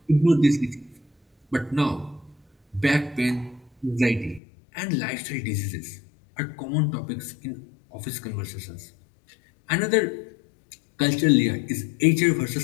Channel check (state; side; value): drops out; right; at 4.4 s